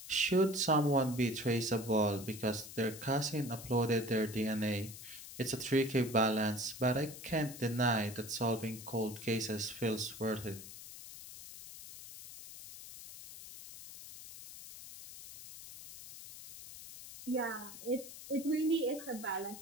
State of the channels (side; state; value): left; noise; hiss, 13 dB below the sound